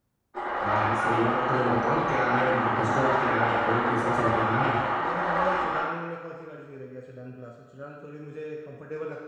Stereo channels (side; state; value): both; identical; correlation 1.00